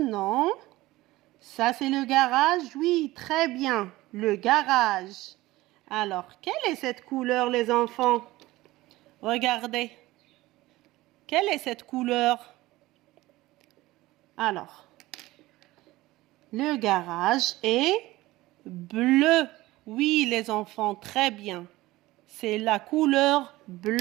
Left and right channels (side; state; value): left; quieter; 18.3 dB